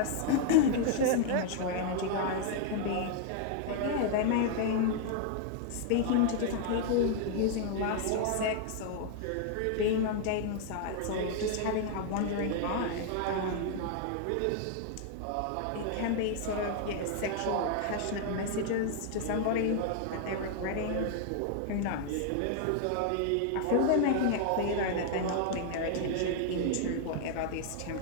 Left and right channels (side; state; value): both; different; correlation 0.00